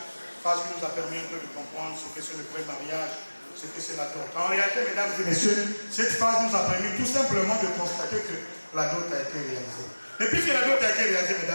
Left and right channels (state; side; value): inverted; both; correlation -1.00